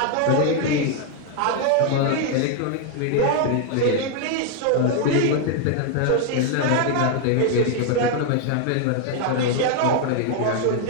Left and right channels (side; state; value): both; different; correlation 0.00